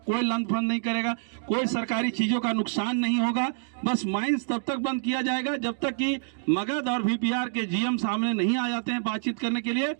लंच-फंड नहीं करेगा, कोई सरकारी चीजों का नुकसान नहीं होगा। बस माइंस तब तक बंद किया जाएगा जब तक कि मगध और VPR के GM सामने नहीं आ जाते हैं बातचीत करने के लिए।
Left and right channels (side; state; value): left; silent; digital silence